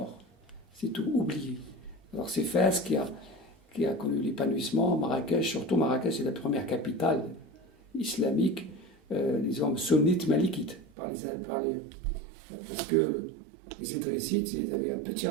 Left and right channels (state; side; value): drops out; left; at 10.9 s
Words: c'est tout oublié. Alors c'est Fès qui a connu l'épanouissement, Marrakech, surtout Marrakech, c'est la première capitale islamique, disons sunnite malikite, parce que les Idrissites, ils avaient un petit